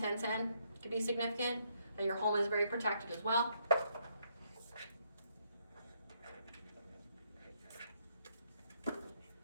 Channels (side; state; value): both; inverted; correlation -0.73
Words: could be significant. That your home is very protected as well.